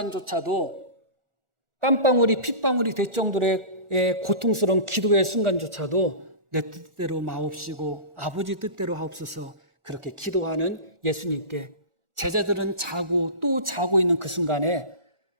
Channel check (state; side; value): late; left; 1.4 ms